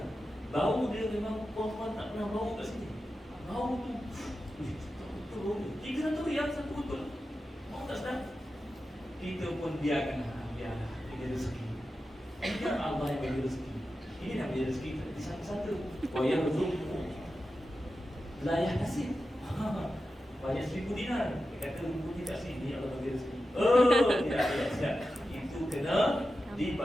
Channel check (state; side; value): normal; both; correlation 0.91